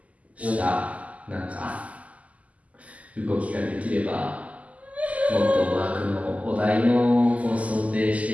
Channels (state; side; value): late; left; 0.070 ms